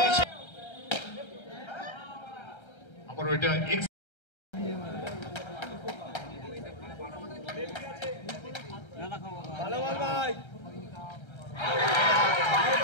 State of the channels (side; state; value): right; late; 1.3 ms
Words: আবারও এটা ভালো বল ভাই।